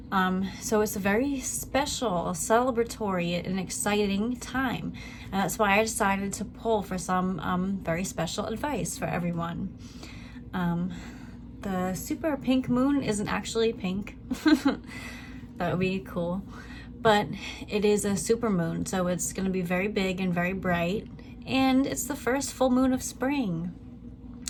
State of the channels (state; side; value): identical; both; correlation 1.00